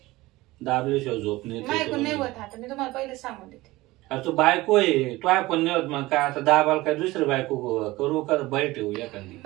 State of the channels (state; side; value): quieter; left; 19.4 dB